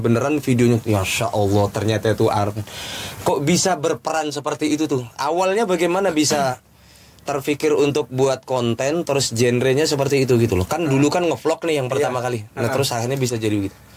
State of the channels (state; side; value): identical; both; correlation 1.00